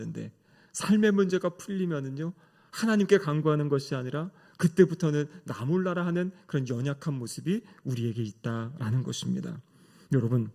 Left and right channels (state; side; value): identical; both; correlation 1.00